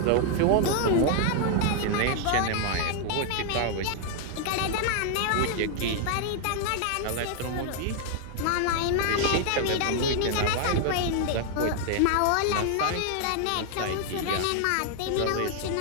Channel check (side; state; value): both; different; correlation 0.00